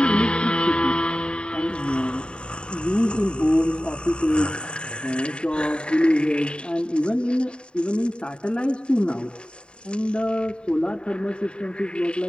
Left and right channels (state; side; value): late; right; 0.052 ms